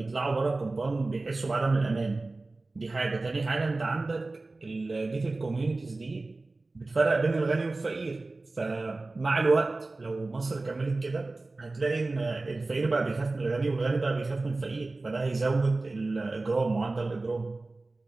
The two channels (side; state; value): left; quieter; 3.3 dB